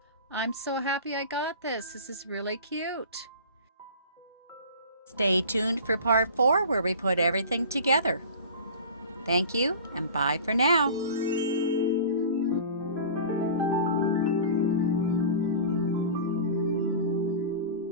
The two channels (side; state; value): both; inverted; correlation -0.37